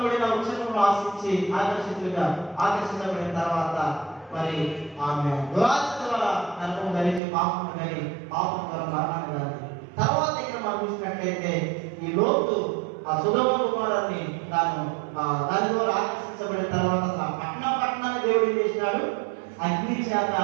వృక్షంలో ఆకర్షించబడిన తర్వాత మరి ఆమె దురాశ ద్వారా నరకం కలిగి పాపం కలిగి పాపం ద్వారా మరణాన్ని కలిగి తర్వాత ఇక్కడ మనం చూసినట్లయితే ఈ లోతు ఆ సొదొమ గొమొర్రాని దాని ద్వారా ఆకర్షించబడిన తర్వాత పట్టణాన్ని దేవుడు ఏం చేసినాడు? అగ్ని చేత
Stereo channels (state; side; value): drops out; left; at 7.2 s